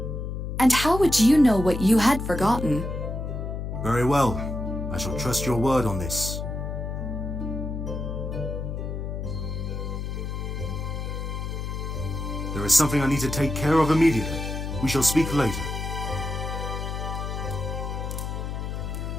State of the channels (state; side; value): noise; left; hum, 4 dB below the sound